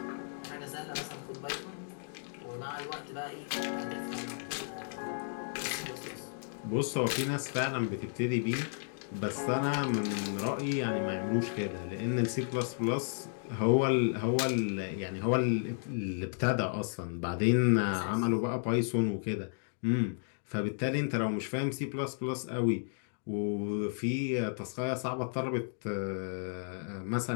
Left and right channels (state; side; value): silent; right; digital silence